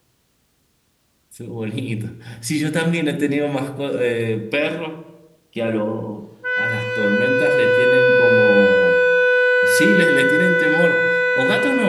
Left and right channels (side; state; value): both; identical; correlation 1.00